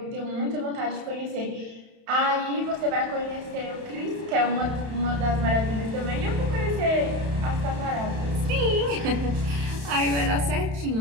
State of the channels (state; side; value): late; left; 31 ms